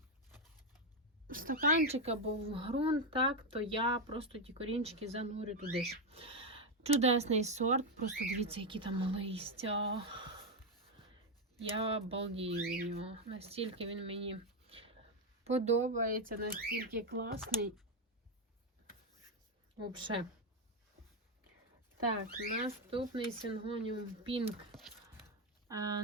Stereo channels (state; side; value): normal; both; correlation 0.05